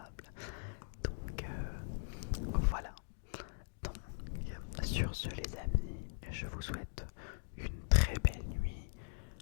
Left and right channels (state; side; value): silent; right; digital silence